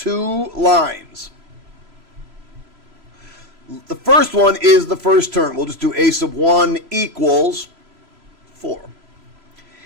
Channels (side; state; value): left; late; 3.0 ms